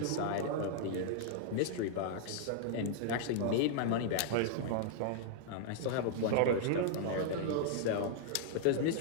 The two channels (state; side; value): different; both; correlation -0.01